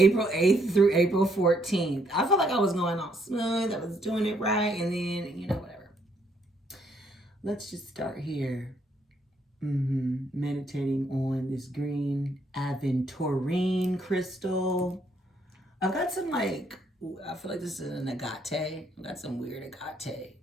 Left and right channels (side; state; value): both; normal; correlation 0.71